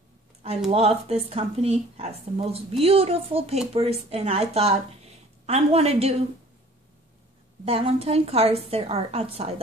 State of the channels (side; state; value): both; normal; correlation 0.51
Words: I love this company. Has the most beautiful papers, and I thought I want to do Valentine cards that are outside